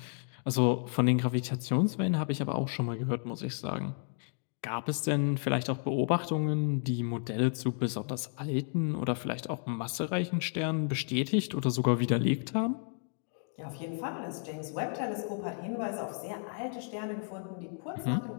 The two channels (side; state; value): right; silent; 56 dB below the other